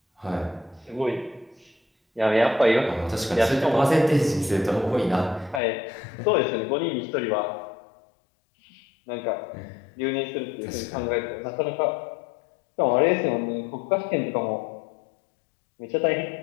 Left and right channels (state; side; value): drops out; right; at 5.6 s